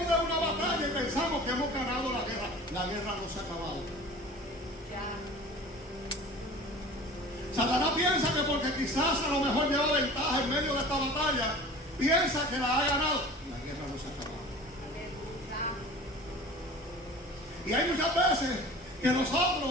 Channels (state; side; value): normal; both; correlation 0.41